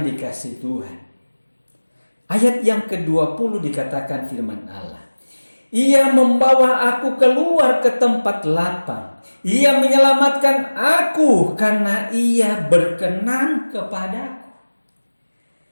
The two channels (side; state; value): both; inverted; correlation -1.00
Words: dikasihi Tuhan, ayat yang ke-20 dikatakan firman Allah, ia membawa aku keluar ke tempat lapang, ia menyelamatkan aku karena ia berkenan kepadaku.